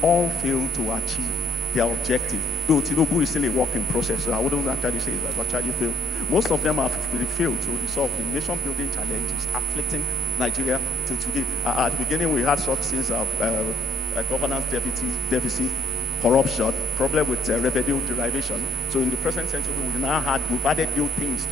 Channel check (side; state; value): left; noise; hum, 18 dB below the sound